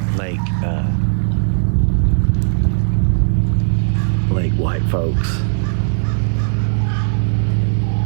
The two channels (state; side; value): silent; left; digital silence